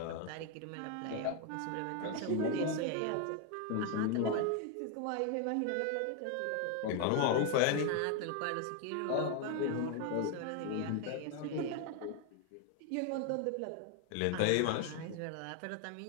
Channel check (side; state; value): both; different; correlation 0.01